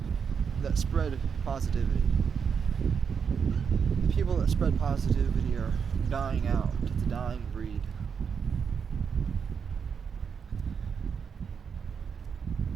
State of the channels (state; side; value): quieter; left; 6.6 dB